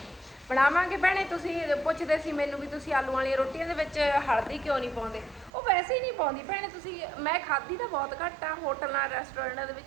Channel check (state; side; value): drops out; left; at 5.5 s